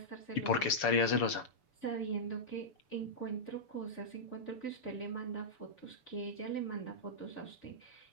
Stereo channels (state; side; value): late; right; 6.9 ms